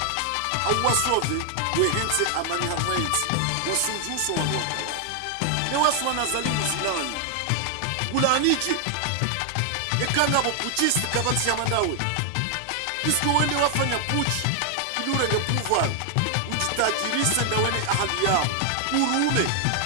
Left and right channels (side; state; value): both; different; correlation 0.00